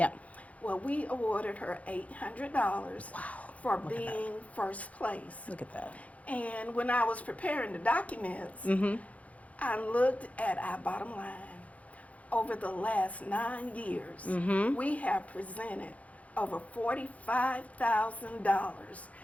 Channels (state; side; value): late; right; 0.067 ms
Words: Well, we awarded her $800 for being first place. Look at that. And when I was preparing the documents, I looked at our bottom line. Over the last 9 years, we have presented over $45,000